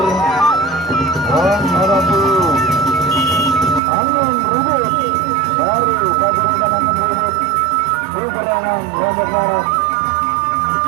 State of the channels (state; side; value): drops out; left; at 3.8 s